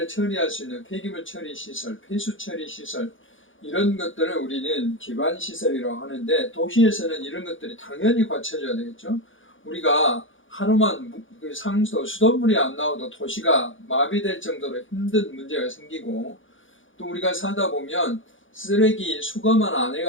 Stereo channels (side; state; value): right; late; 0.57 ms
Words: 처리할 수 있는 폐기물 처리 시설, 폐수 처리 시설 이런 것들을 우리는 기반 시설이라고 하는데 도시에서는 이런 것들이 당연히 갖춰져야 되겠죠. 우리가 하루만 수돗물이 안 나와도 도시가 마비될 정도로 힘든 문제가 생기고 또 우리가 살다 보면 쓰레기 수거만 안